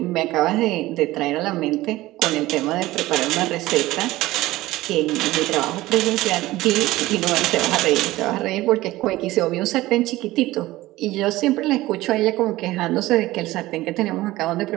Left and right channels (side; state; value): left; quieter; 17.6 dB